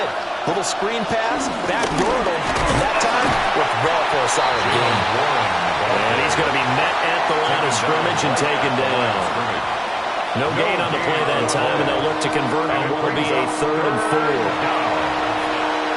Little screen pass, backdoored him, and that time worked well for a solid game. And he's going to be met at the line of scrimmage and taken down. No gain on the play that time, and they'll look to convert on what will be a 3rd and 4.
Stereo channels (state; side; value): identical; both; correlation 1.00